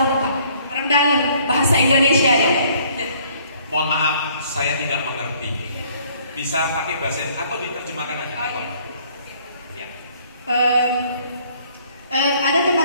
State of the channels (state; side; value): inverted; both; correlation -0.60